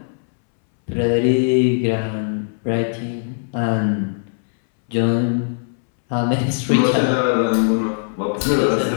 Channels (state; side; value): silent; right; 66 dB below the other